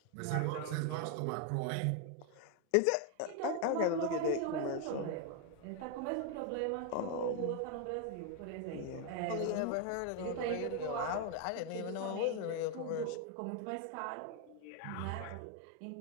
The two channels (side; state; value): both; different; correlation 0.01